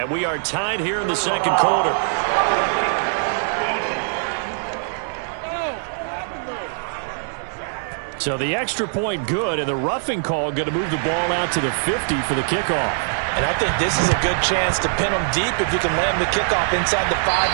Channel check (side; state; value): left; silent; 64 dB below the other